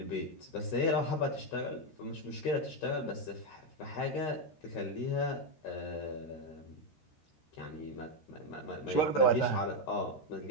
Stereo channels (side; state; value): right; late; 13 ms